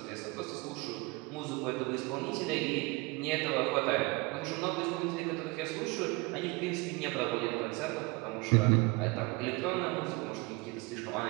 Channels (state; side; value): quieter; left; 25.8 dB